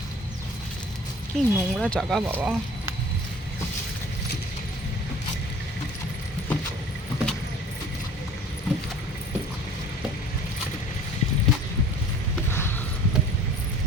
কি নোংরা জায়গা বাবা।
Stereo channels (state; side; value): normal; both; correlation 0.46